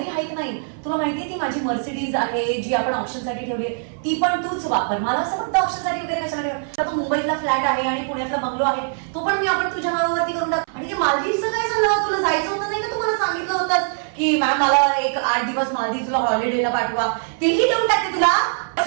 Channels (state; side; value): silent; left; 56 dB below the other